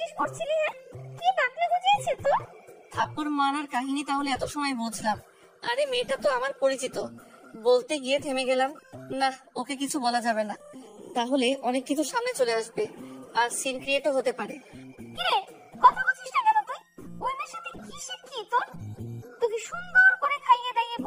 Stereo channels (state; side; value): identical; both; correlation 1.00